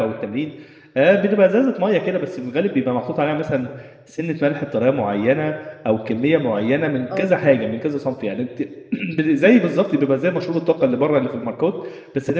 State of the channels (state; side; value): identical; both; correlation 1.00